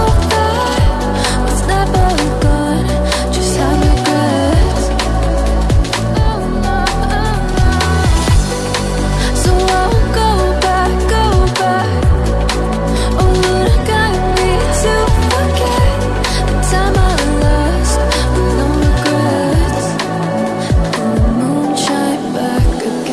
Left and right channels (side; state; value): both; identical; correlation 1.00